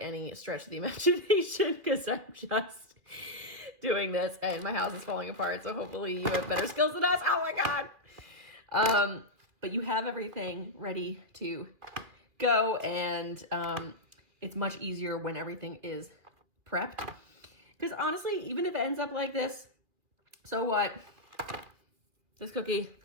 stretch of the imagination, because I'm just doing this and my house is falling apart. So hopefully you have better skills than us. Oh my God. But you have everything ready to go, and it's much easier when everything is prepped. Because honestly, even if it ends up like this, so what? This cookie,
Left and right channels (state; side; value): late; left; 2.5 ms